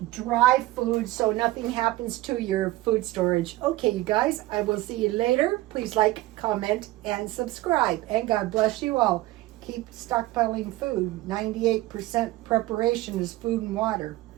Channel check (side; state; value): left; quieter; 18.0 dB